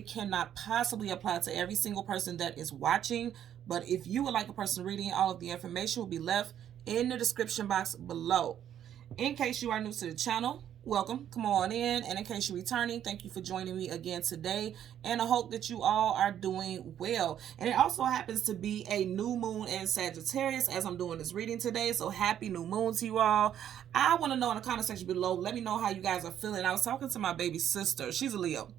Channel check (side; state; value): left; quieter; 10.2 dB